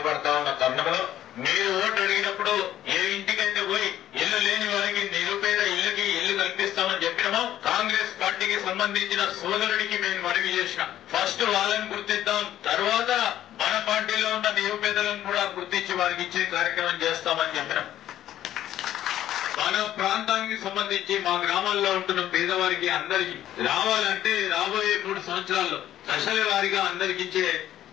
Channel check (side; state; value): right; quieter; 12.3 dB